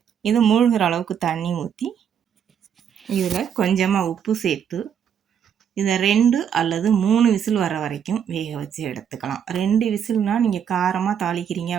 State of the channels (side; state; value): left; quieter; 8.3 dB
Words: இது மூழ்கிற அளவுக்கு தண்ணி ஊற்றி இதில் கொஞ்சமாக உப்பு சேர்த்து இதை 2 அல்லது 3 விசில் வர வரைக்கும் வேக வச்சு எடுத்துக்கலாம். 2 விசில்னால் நீங்கள் காரமாக தாளிக்கிறீங்க